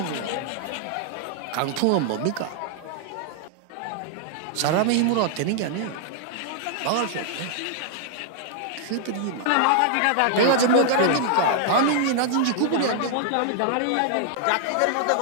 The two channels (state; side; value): different; both; correlation -0.01